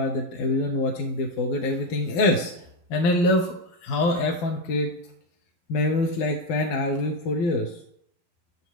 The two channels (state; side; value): late; right; 12 ms